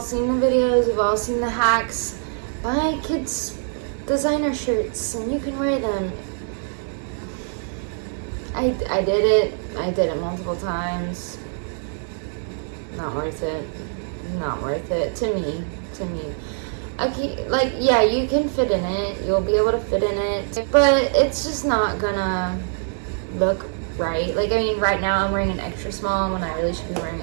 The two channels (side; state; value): left; silent; digital silence